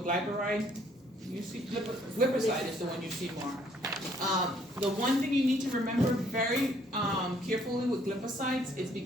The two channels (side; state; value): both; normal; correlation 0.64